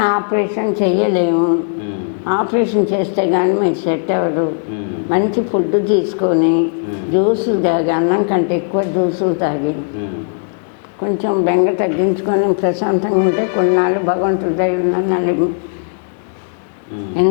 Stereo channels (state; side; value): silent; right; 69 dB below the other